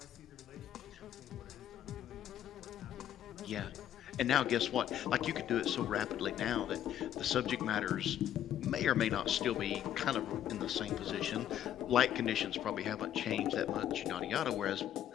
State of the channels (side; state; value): right; quieter; 10.9 dB